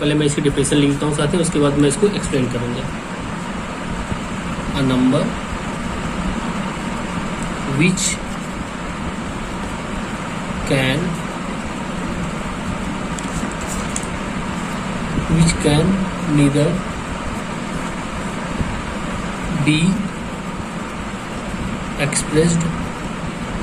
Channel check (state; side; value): identical; both; correlation 1.00